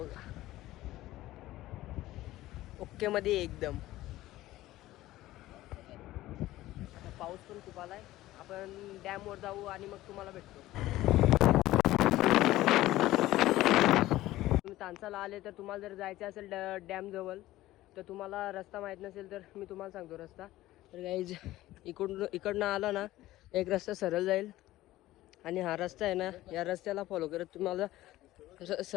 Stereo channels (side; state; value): right; quieter; 16.1 dB